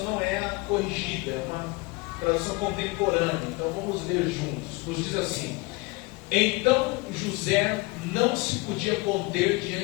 não é a corrigida, é uma tradução contemporânea. Então vamos ler juntos. Nos diz assim: Então José não se podia conter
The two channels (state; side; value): quieter; right; 25.1 dB